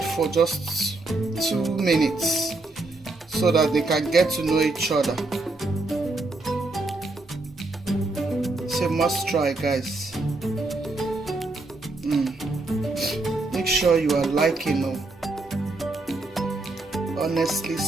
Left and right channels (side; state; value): left; quieter; 3.1 dB